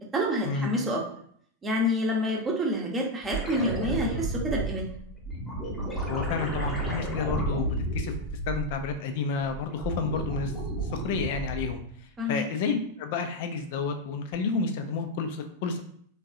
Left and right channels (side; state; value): both; normal; correlation 0.06